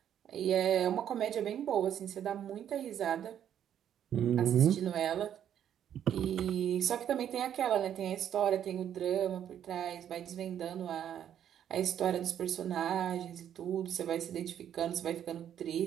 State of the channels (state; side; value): quieter; left; 9.8 dB